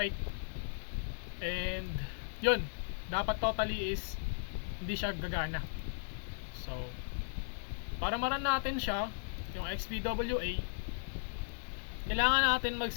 and yun, dapat totally is hindi siya gagana. So para maran natin siya, yung XPWA, kailangan natin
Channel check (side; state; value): right; silent; 54 dB below the other